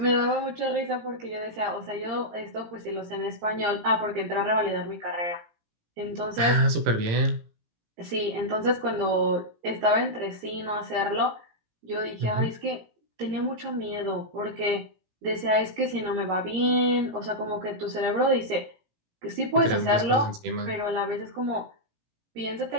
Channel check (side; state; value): left; late; 17 ms